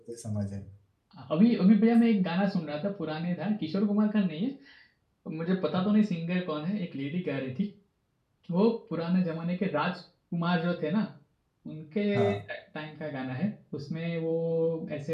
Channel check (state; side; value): identical; both; correlation 1.00